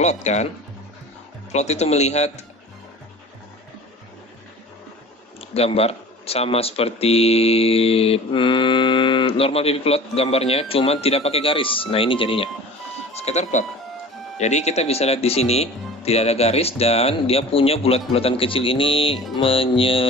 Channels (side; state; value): both; normal; correlation 0.40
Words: kan. Plot itu melihat gambar sama seperti normal PV plot, gambarnya cuma tidak pakai garis. Nah, ini jadinya scatter plot. Jadi kita bisa lihat di sini tidak ada garis dan dia punya bulat-bulatan kecil ini